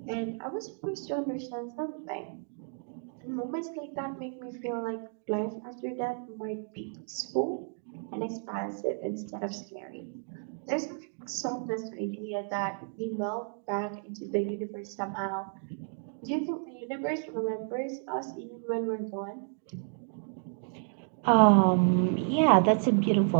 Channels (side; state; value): left; silent; 57 dB below the other